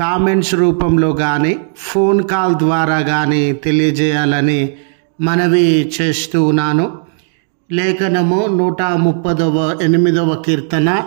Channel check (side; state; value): left; silent; 71 dB below the other